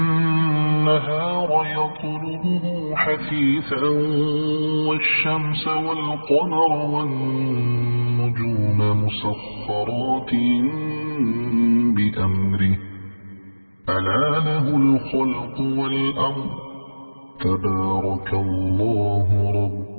يطلبه حثيثا والشمس والقمر والنجوم مسخرات بأمره ألا له الخلق والأمر تبارك الله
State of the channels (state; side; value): inverted; both; correlation -1.00